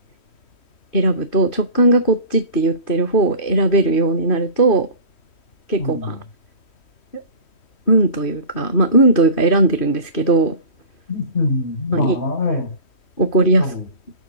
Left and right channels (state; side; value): late; right; 3.1 ms